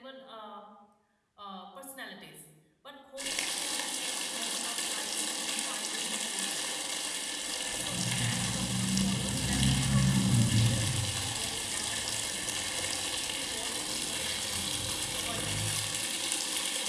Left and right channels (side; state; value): both; identical; correlation 1.00